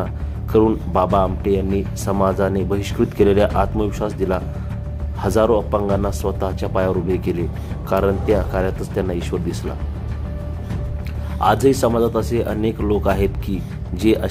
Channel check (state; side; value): identical; both; correlation 1.00